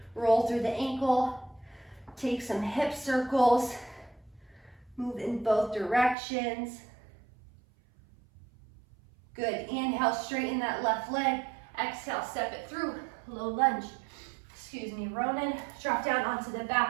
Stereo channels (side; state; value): left; drops out; at 6.2 s